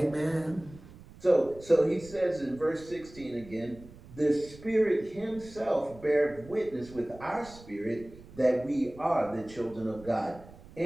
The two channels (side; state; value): right; noise; rumble, 19 dB below the sound